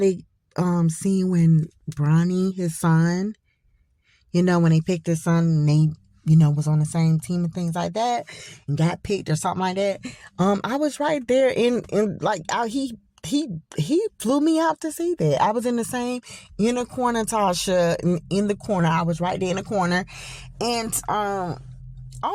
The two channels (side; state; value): both; identical; correlation 1.00